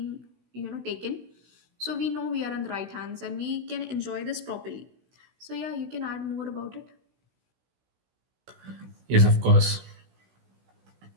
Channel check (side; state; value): left; late; 16 ms